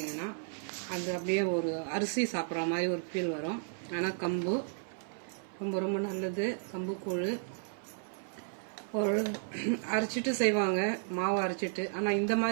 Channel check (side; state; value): left; silent; 55 dB below the other